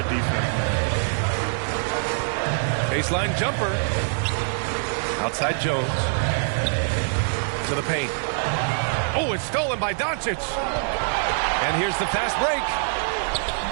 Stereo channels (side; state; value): left; silent; digital silence